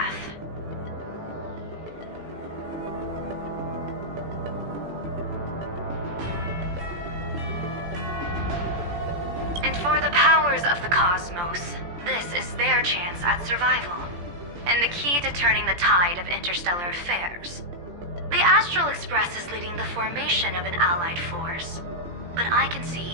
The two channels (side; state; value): left; late; 17 ms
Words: And for the powers of the cosmos, this is their chance at survival, and the key to turning the tide of interstellar affairs. The Astral Express is leading the formation of an allied force, but I can